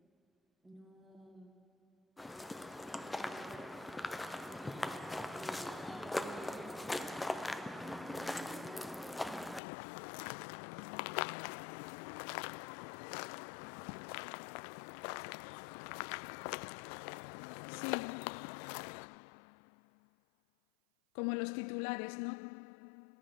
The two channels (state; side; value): drops out; right; at 9.6 s